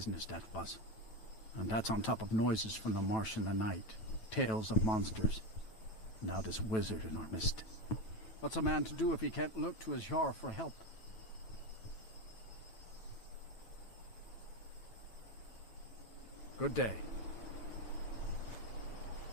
that was. And that's on top of noises from the marsh in the night. Tales of monsters. Now this wizard in our midst. What's a man to do if he can't look to his Jarl for help? Good day.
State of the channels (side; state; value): right; late; 9.1 ms